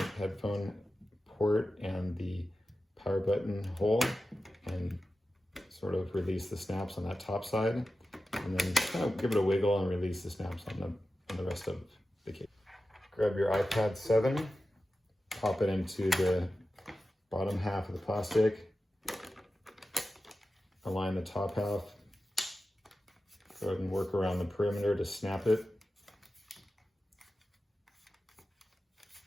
headphone port and the power button hole and sort of release the snaps on that top side, and then kind of give it a wiggle and release the snaps on the rest of the case. Grab your iPad 7, pop it into the bottom half of the plastic, align the top half, go ahead and work around the perimeter to snap it.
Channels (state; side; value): normal; both; correlation 0.93